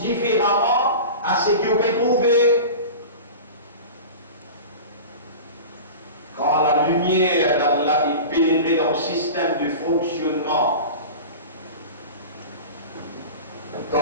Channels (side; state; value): both; inverted; correlation -0.33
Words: différemment à ce qu'on peut trouver. Quand la lumière d'Allah est pénétrée dans le système de fonctionnement,